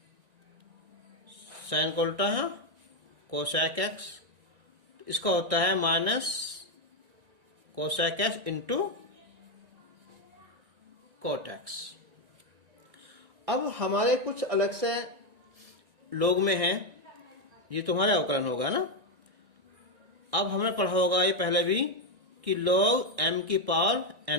sine का उल्टा है कोसेक एक्स, इसका होता है minus cosec x into cot x. अब हमारे कुछ अलग से लोग में है, ये तुम्हारे अवकलन होगा ना। अब हमने पढ़ा होगा ये पहले भी कि log m की पावर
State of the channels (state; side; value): late; left; 1.9 ms